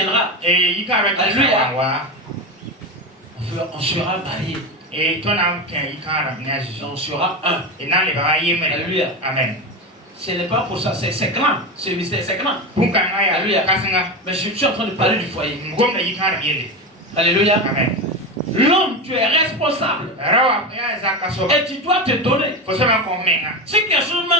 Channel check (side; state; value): both; normal; correlation 0.19